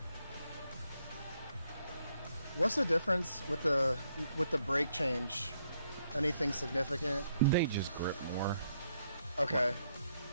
What's the difference with the brake change? Anything significant? They just grip more. Okay.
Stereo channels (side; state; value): both; inverted; correlation -0.75